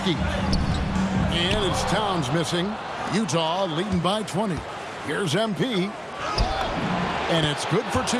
And it's Towns missing. Utah leading by 20. Here's MP. And it's good for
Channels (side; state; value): both; identical; correlation 1.00